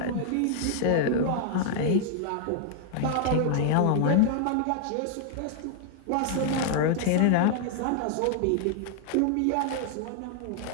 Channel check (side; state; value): both; different; correlation 0.00